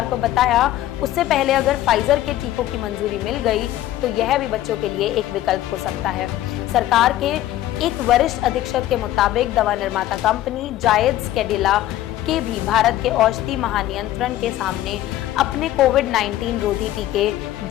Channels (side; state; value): right; quieter; 14.0 dB